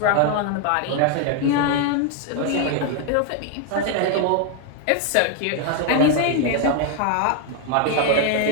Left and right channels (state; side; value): different; both; correlation 0.01